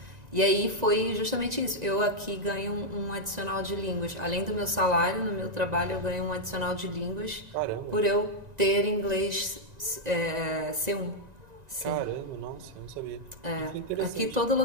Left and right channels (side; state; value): left; late; 1.9 ms